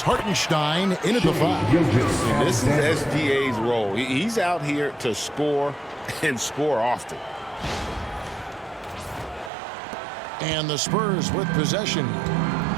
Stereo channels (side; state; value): left; drops out; at 9.5 s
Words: Hartenstein in at the 5. And this is SGA's role. He's out here to score and score often. And the Spurs with possession.